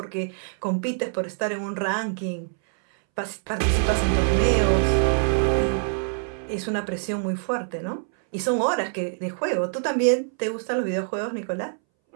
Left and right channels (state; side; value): silent; left; 62 dB below the other